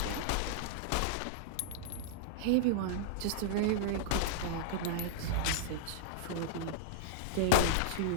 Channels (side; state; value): both; different; correlation -0.02